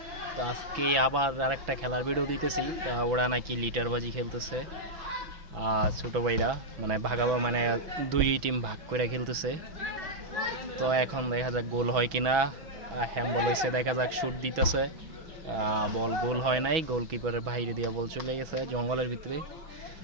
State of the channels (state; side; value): late; left; 6.1 ms